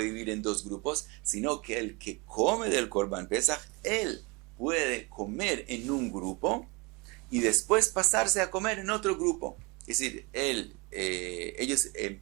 dividir en dos grupos, sino que el que come del Korban Pesach, él puede comer en un grupo y después pasarse a comer en otro grupo. Es decir, ellos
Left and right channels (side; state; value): left; quieter; 27.9 dB